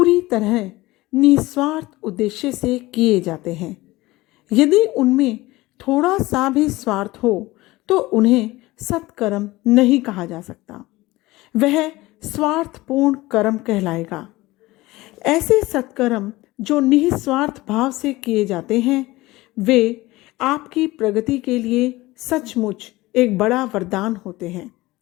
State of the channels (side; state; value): right; quieter; 19.5 dB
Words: तरह निस्वार्थ उद्देश्य से किए जाते हैं। यदि उनमें थोड़ा सा भी स्वार्थ हो तो उन्हें सत्कर्म नहीं कहा जा सकता, वह स्वार्थपूर्ण कर्म कहलाएगा। ऐसे सत्कर्म जो निस्वार्थ भाव से किए जाते हैं वे आपकी प्रगति के लिए सचमुच एक बड़ा वरदान होते हैं।